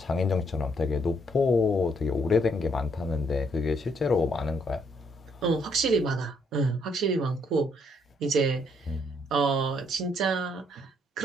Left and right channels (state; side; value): normal; both; correlation 0.71